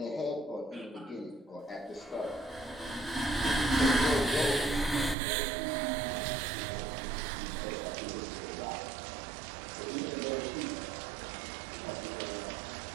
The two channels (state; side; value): drops out; left; at 5.2 s